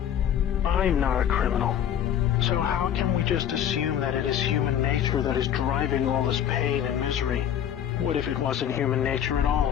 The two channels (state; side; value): quieter; right; 9.7 dB